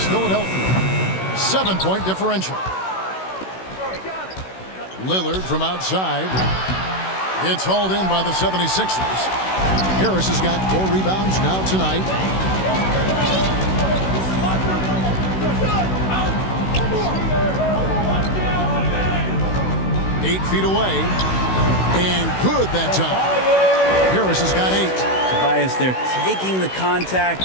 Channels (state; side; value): late; right; 16 ms